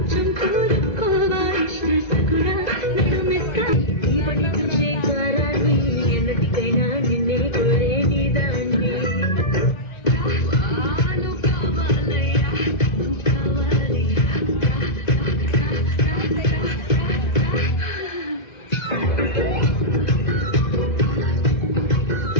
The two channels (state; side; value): late; right; 1.9 ms